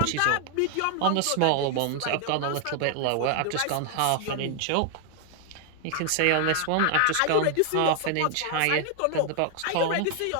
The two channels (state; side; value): different; both; correlation 0.00